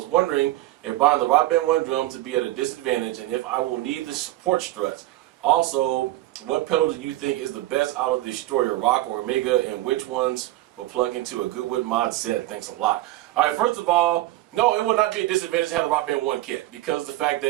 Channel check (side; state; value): left; quieter; 16.4 dB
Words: wondering if buying the Rock Band 1 drums would be at a disadvantage and if I will need the support struts. Also, what pedal do you think is the best out of the Destroyer, Rock or Omega, and which ones will plug into a GoodWood Mod set? Thanks a lot. Alright, first of all, no, it will not be a disadvantage to have the Rock Band 1 kit because the fact